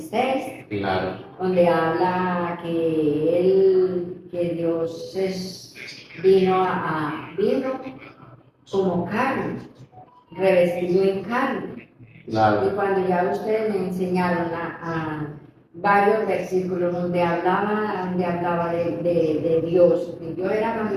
Claro. donde habla que Dios vino como carne, revestido en carne. Claro. Y cuando ya ustedes me enseñaron a varios versículos donde hablaba de Dios, que Dios era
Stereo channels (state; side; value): identical; both; correlation 1.00